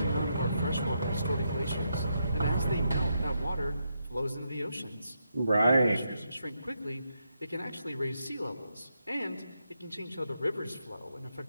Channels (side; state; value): both; inverted; correlation -0.81